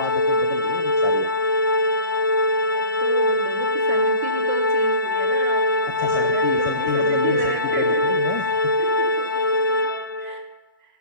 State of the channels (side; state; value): both; inverted; correlation -0.43